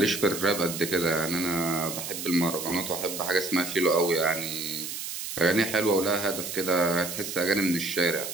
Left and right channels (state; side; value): noise; right; hiss, 6 dB below the sound